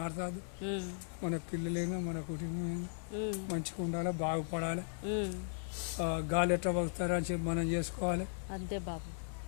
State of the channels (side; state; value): right; silent; 53 dB below the other